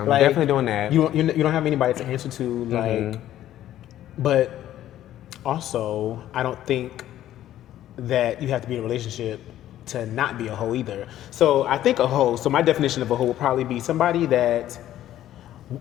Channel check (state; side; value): quieter; right; 12.7 dB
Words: I'm Like, definitely doing that. You don't have anybody to answer to, like. But also, I don't think that you have to be in a relationship to not be a hoe either. So I think a hoe. So my definition of a hoe would probably be somebody that